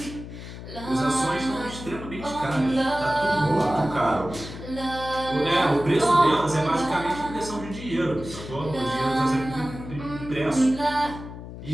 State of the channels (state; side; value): noise; left; hum, 12 dB below the sound